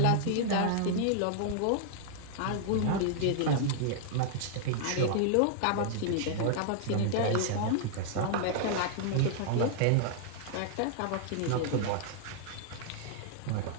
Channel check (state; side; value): different; both; correlation -0.01